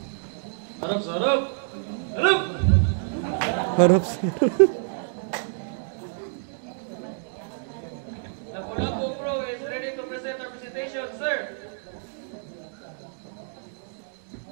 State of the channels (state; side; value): silent; left; 60 dB below the other